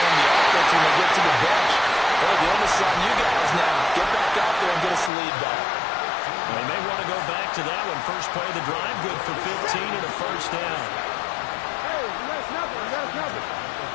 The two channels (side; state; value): right; drops out; at 5.1 s